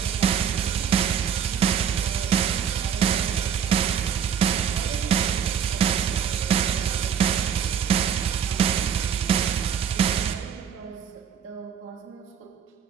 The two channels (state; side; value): quieter; left; 7.9 dB